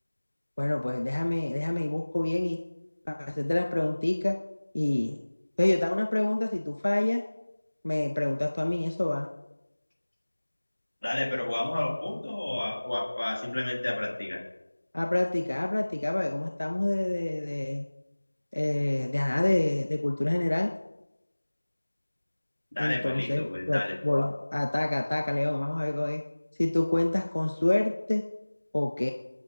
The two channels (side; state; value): both; inverted; correlation -1.00